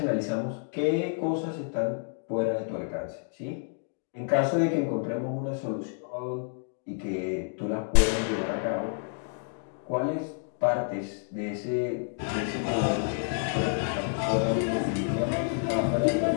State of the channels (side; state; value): right; silent; 58 dB below the other